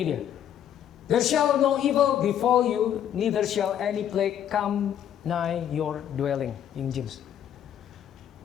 dia. There shall no evil befall you, neither shall any plague come nigh your dwelling. King James.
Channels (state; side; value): quieter; right; 10.0 dB